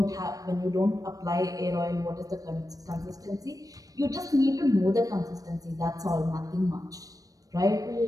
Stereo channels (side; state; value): left; late; 0.17 ms